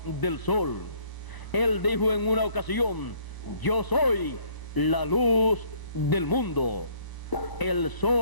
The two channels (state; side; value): late; right; 1.0 ms